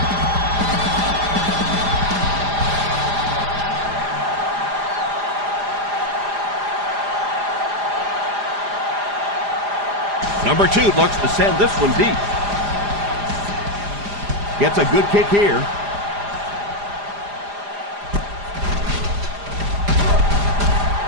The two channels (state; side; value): late; left; 4.9 ms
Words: Number 2 looks to send this one deep. Gets a good kick here.